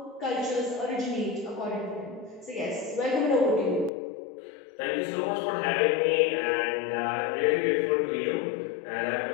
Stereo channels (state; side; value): drops out; right; at 3.9 s